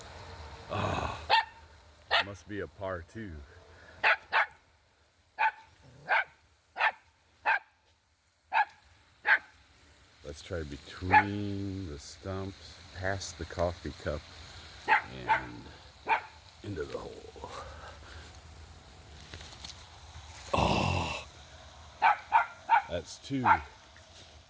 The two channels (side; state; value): both; identical; correlation 1.00